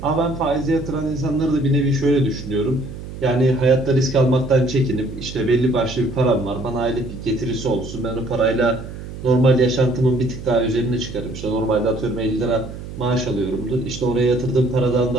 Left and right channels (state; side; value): noise; right; hum, 11 dB below the sound